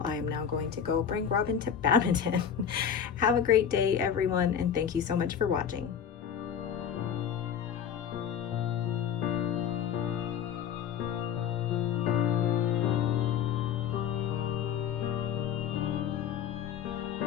I am now going to go bring Robin to badminton. Have a great day, everyone, and thank you so much for watching.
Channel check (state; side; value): quieter; right; 8.2 dB